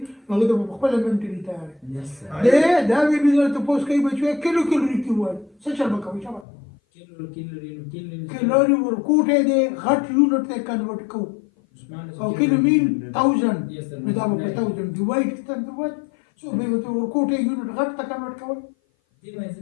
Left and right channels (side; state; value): right; drops out; at 6.5 s